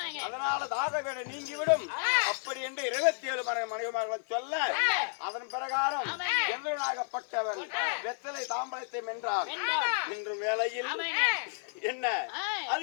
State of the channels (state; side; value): silent; right; 56 dB below the other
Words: அதனால தாகவேட நீங்கிவிடும். அப்படி என்று 27 மனைமார்கள் சொல்ல அதன் பிரகாரம் எந்தனாகப்பட்டவன் வெத்தலை தாம்பலத்தை வென்றார். இன்று வேளையில் என்ன